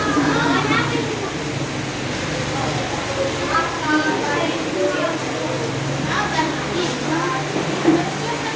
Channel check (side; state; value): both; identical; correlation 1.00